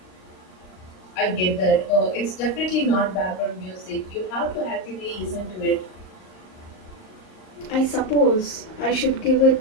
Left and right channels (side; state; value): right; late; 38 ms